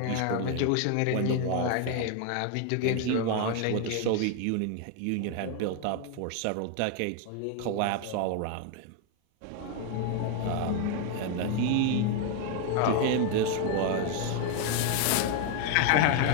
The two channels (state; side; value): different; both; correlation 0.01